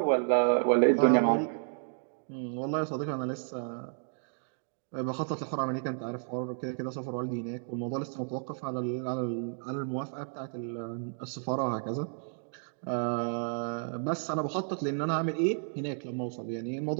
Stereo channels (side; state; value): left; silent; digital silence